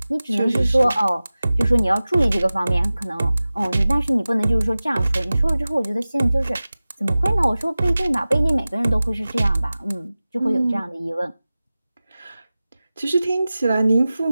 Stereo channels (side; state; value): both; inverted; correlation -0.97